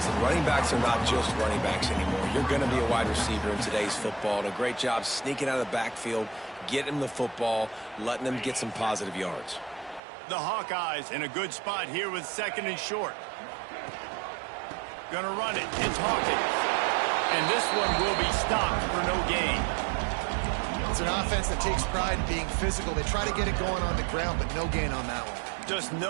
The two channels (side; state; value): left; drops out; at 10.0 s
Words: running backs are not just running backs anymore. You're going to be a wide receiver in today's football. And a great job sneaking out of the backfield, getting him the football, letting him get some positive yards. The Hawkeyes in a good spot here with 2nd and short. Gonna run it. It's Hawkins. And this one will be stopped for no gain. It's an offense that takes pride in being physical. They try to get it going on the ground, but no gain on that one. Just